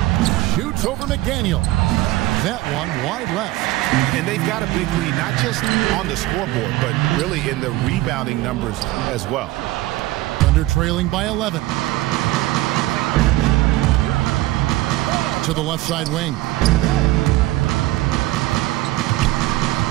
Shoots over McDaniel. That one wide left. And they've got a big lead, not just on the scoreboard, but really in the rebounding numbers as well. Under trailing by 11. To the left side wing.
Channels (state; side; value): quieter; left; 17.6 dB